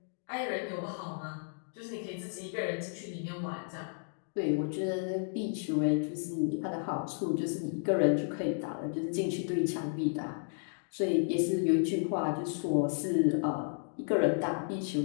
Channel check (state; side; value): silent; right; digital silence